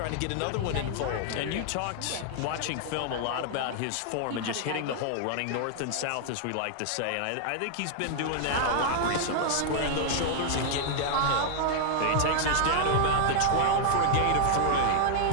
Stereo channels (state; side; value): different; both; correlation -0.01